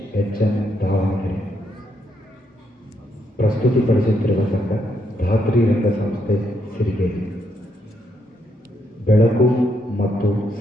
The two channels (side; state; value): both; normal; correlation 0.77